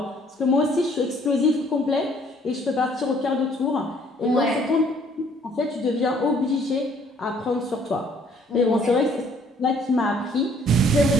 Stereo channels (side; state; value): both; normal; correlation 0.61